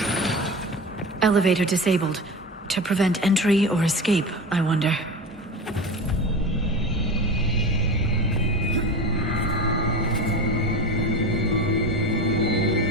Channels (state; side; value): normal; both; correlation 0.28